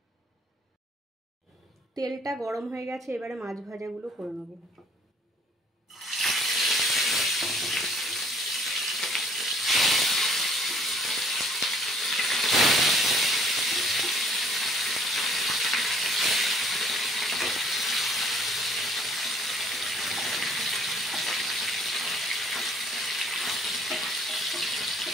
তেলটা গরম হয়ে গেছে, এবারে মাছ ভাজাগুলো করে নেব।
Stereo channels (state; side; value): normal; both; correlation 0.59